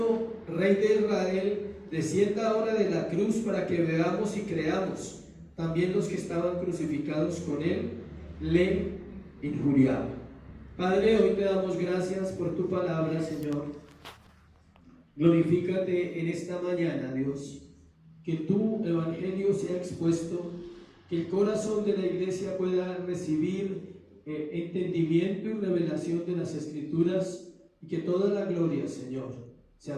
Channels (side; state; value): both; identical; correlation 1.00